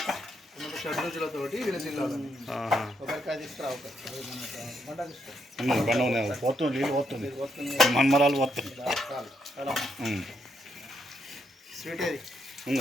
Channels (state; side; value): normal; both; correlation 0.77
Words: షడ్రుచులతోటి విలసిల్లాలని ఒకరికాయ తీసుకురా పోతుంది నీళ్ళు పోతుంది మన్మరాలు పోతుంది స్వీట్ అది